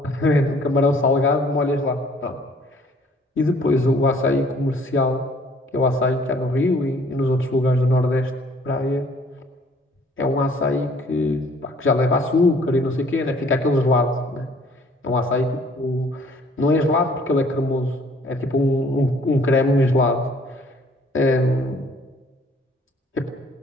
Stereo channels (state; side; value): normal; both; correlation 0.58